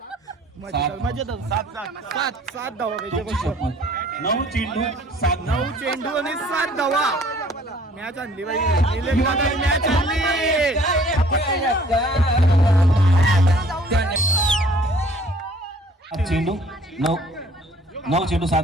मजेदार 7 धावा पाहिजे. 9 चेंडू 9 आणि 7 धावा. मॅच आणली बाई. निलेश दादा मॅच आणली. चेंडू 9 चेंडू 7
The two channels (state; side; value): normal; both; correlation 0.56